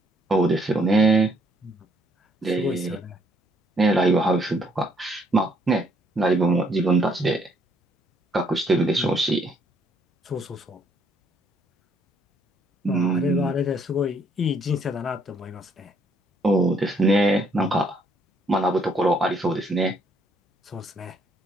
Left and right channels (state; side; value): normal; both; correlation 0.67